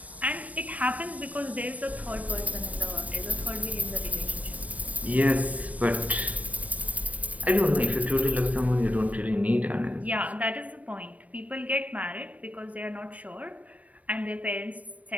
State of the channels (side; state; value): left; late; 0.069 ms